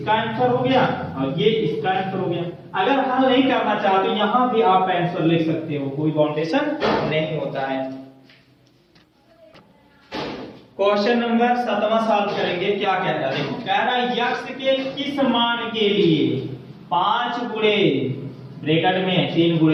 आंसर हो गया और ये इसका आंसर हो गया। अगर हल नहीं करना चाहते यहां भी आप आंसर लिख सकते हो, कोई बाउंडेशन नहीं होता है। क्वेश्चन नंबर 7वां सॉल्व करेंगे। क्या कह रहा है, देखो कह रहा है x के किस मान के लिए 5 गुणे ब्रैकेट में 3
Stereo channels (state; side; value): identical; both; correlation 1.00